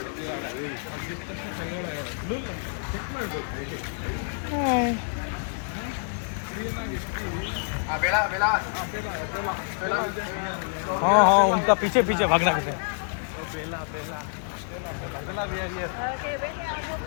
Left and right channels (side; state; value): right; silent; 60 dB below the other